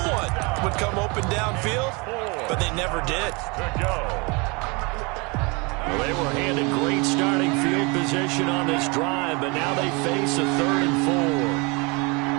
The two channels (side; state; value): left; quieter; 29.0 dB